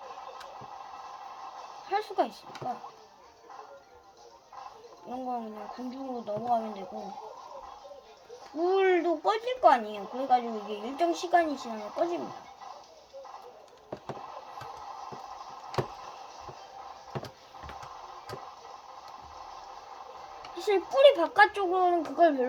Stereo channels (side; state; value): both; identical; correlation 1.00